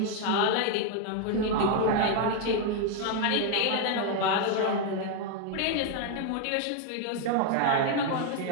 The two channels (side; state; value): both; different; correlation 0.01